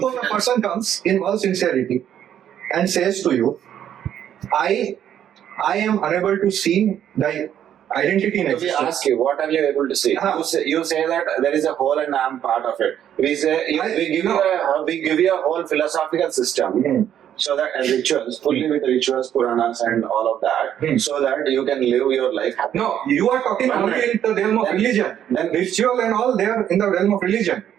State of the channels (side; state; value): left; quieter; 10.1 dB